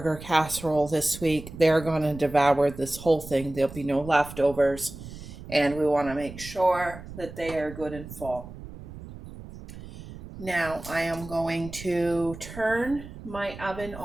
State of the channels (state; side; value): noise; right; rumble, 14 dB below the sound